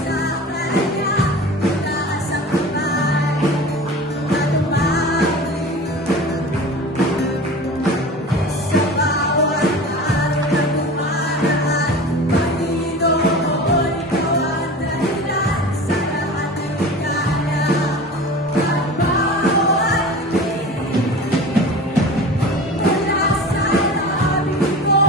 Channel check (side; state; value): both; normal; correlation 0.36